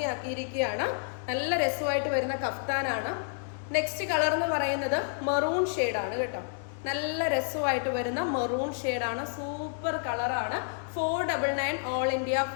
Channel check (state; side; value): silent; right; digital silence